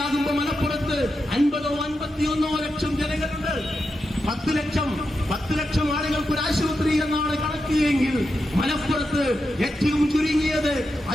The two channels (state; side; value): normal; both; correlation 0.87